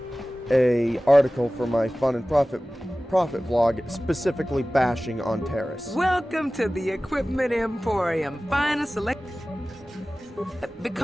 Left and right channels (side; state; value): both; normal; correlation 0.97